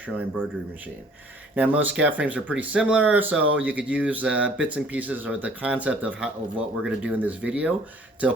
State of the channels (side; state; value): both; normal; correlation 0.55